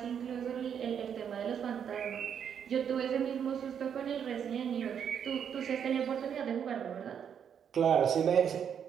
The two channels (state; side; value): quieter; left; 8.1 dB